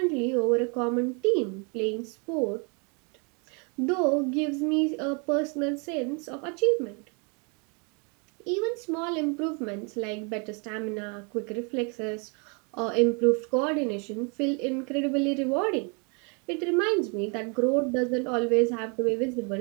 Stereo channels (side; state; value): left; quieter; 34.3 dB